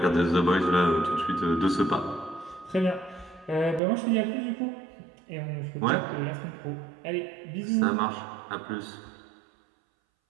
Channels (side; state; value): left; drops out; at 3.8 s